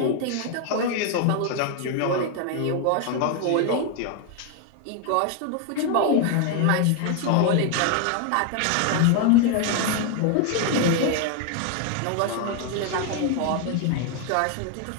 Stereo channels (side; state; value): both; different; correlation 0.01